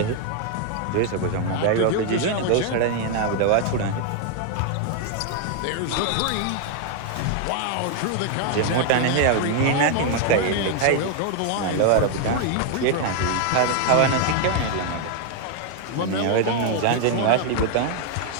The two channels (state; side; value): different; both; correlation 0.00